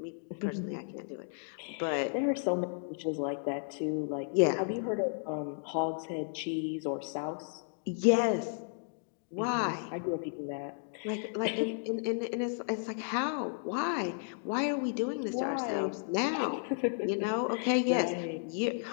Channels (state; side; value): silent; right; digital silence